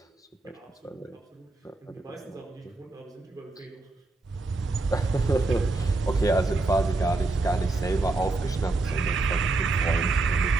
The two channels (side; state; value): left; quieter; 3.3 dB